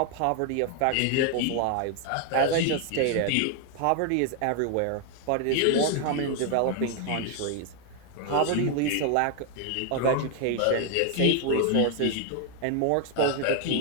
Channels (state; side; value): different; both; correlation 0.00